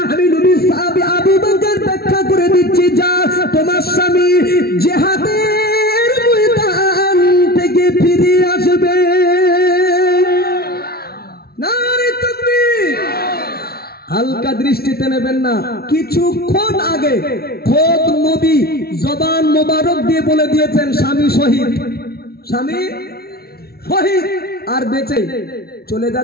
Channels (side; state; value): right; late; 0.45 ms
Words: আমি নবী সাহাবী আবু বকর ব্যাখ্যা করে দিচ্ছি, যা তোমার স্বামী জিহাদের ময়দান থেকে ফিরে আসবে। নারে তাকবীর! হালকা দৃষ্টিতে নেবেন না। কিছুক্ষণ আগে খোদ নবী জবান মোবারক দিয়ে বলে দিয়েছেন স্বামী শহীদ, স্বামী শহীদ আর বেঁচে চলে